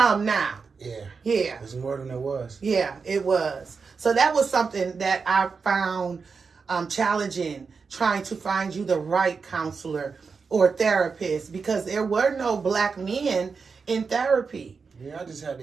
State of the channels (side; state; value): left; quieter; 5.1 dB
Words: now. Yeah. It's more than it was. Yeah, it was. So that was something that I found challenging, trying to find you the right counselor or therapist, because there were no black men in therapy. Yeah, I just had